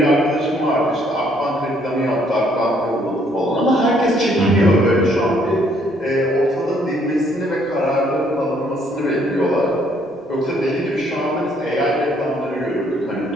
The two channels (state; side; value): normal; both; correlation 0.66